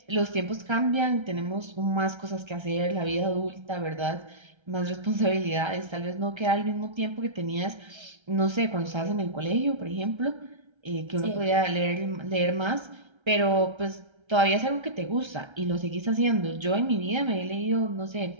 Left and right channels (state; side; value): late; left; 1.3 ms